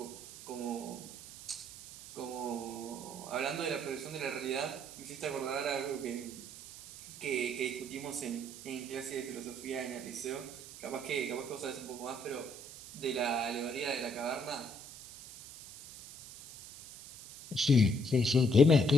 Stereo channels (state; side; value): noise; right; hiss, 14 dB below the sound